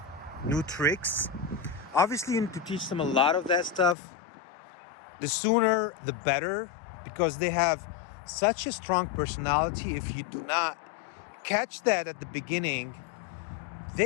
new tricks. Obviously, you need to teach them a lot of that stuff. The sooner, the better, because they have such a strong personality. If you do not catch that at the beginning,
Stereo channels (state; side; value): drops out; right; at 4.0 s